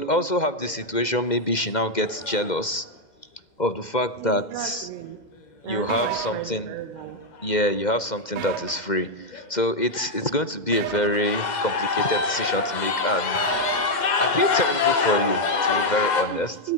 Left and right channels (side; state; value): right; late; 2.1 ms